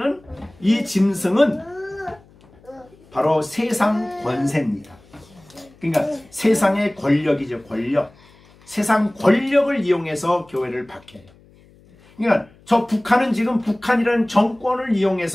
이 짐승은 바로 세상 권세입니다. 그러니까 세상의 권력이죠. 권력. 세상 권력을 이용해서 교회를 박해해요. 그러니까 저 북한은 지금 북한이라는 정권을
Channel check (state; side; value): noise; left; hum, 28 dB below the sound